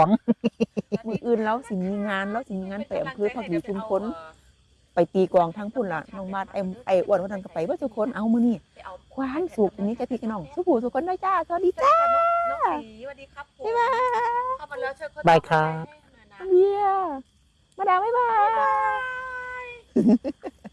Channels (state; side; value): identical; both; correlation 1.00